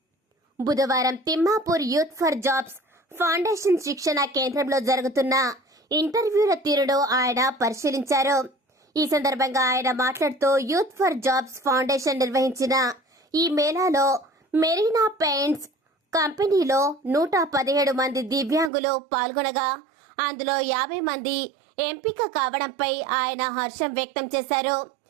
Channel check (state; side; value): drops out; left; at 18.7 s